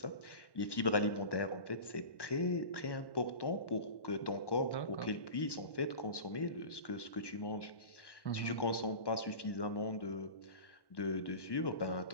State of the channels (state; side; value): late; right; 1.1 ms